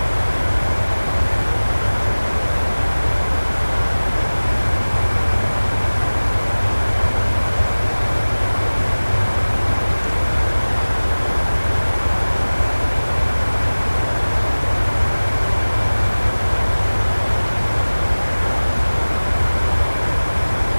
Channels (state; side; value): inverted; both; correlation -1.00